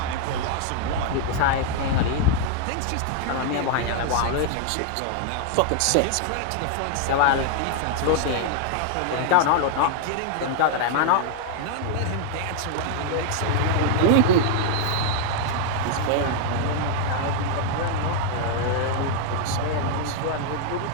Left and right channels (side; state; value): both; different; correlation 0.00